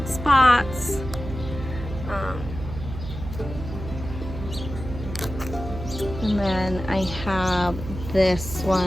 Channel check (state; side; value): noise; right; hum, 9 dB below the sound